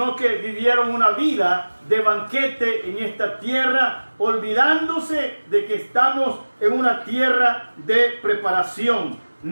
que vivieron una vida de banquete en esta tierra, olvidándose de que estamos en una tierra de preparación.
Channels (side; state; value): both; inverted; correlation -1.00